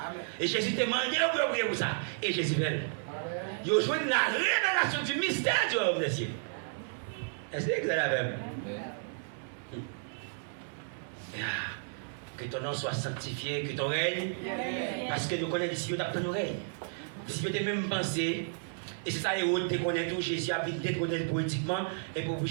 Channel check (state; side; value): silent; left; 56 dB below the other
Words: Et Jésus t'a demandé de prier pour ça. Et Jésus fait. Il a joué la révélation du mystère du royaume des cieux. Est-ce que vous avez la même? Que ton nom soit sanctifié, que ton règne. Parce que nous connaissons ici, nous avons ton règne. Si vous avez même pensé, et c'est ça, et tu connais tout, Jésus a vu détrôner politiquement, et pour